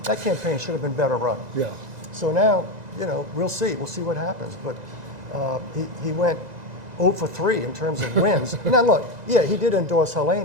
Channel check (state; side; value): late; left; 2.0 ms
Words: that campaign should have been better run. Yeah. So now, we'll see what happens. But he went 0 for 3 in terms of wins. Now look, he did endorse